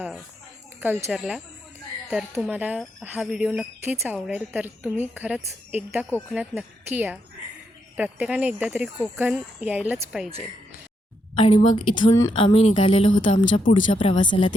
कल्चरला. तर तुम्हाला हा व्हिडिओ नक्कीच आवडेल. तर तुम्ही खरंच एकदा कोकणात नक्की या. प्रत्येकाने एकदा तरी कोकण यायलाच पाहिजे. आणि मग इथून आम्ही निघालेलो होतो आमच्या पुढच्या प्रवासाला,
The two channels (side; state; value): both; normal; correlation 0.80